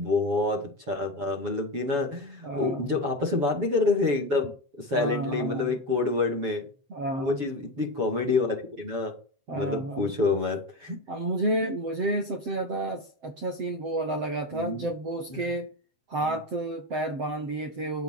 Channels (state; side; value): late; left; 7.8 ms